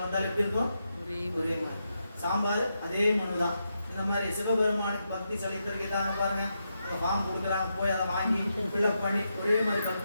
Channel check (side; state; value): both; inverted; correlation -0.85